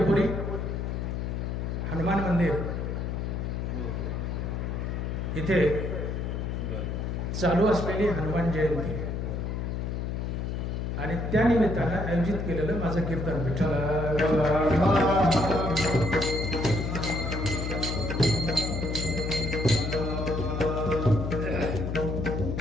हनुमान मंदिर इथे चालू असलेली हनुमान जयंती आणि त्या निमित्तानं आयोजित केलेलं माझं कीर्तन विठ्ठल.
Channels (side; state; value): left; noise; hum, 2 dB below the sound